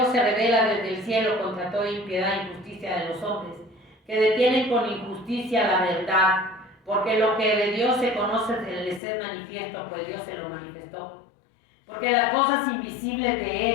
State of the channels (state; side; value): drops out; right; at 9.0 s